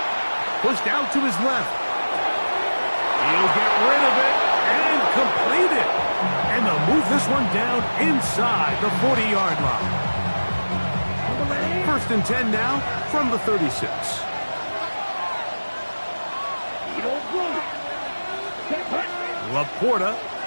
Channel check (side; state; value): both; inverted; correlation -1.00